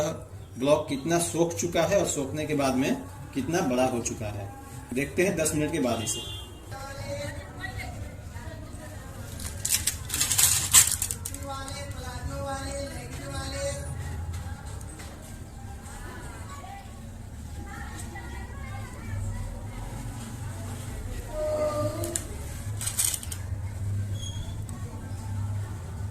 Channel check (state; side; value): identical; both; correlation 1.00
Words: ब्लॉक कितना सोख चुका है और सोखने के बाद में कितना बड़ा हो चुका है। देखते हैं 10 मिनट के बाद इसे।